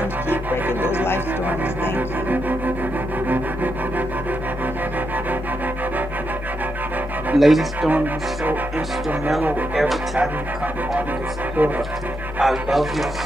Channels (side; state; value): both; normal; correlation 0.83